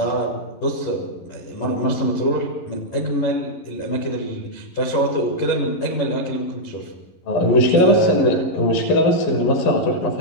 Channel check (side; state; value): right; late; 11 ms